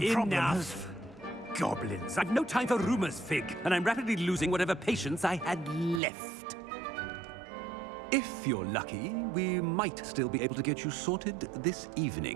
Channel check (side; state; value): left; drops out; at 6.0 s